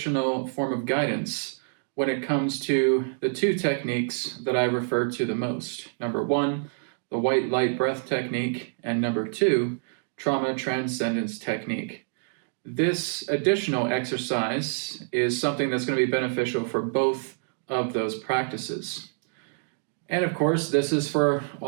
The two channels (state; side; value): silent; left; digital silence